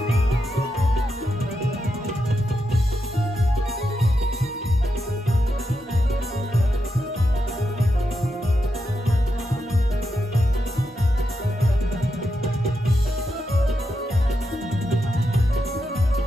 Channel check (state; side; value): normal; both; correlation 0.85